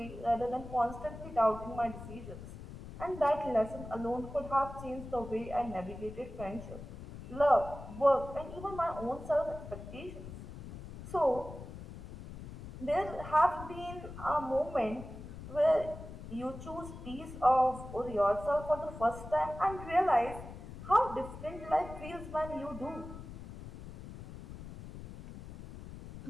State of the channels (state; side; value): noise; left; rumble, 12 dB below the sound